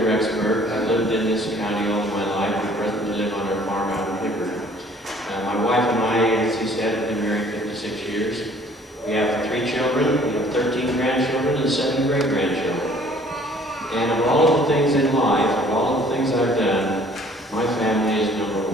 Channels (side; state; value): both; normal; correlation 0.55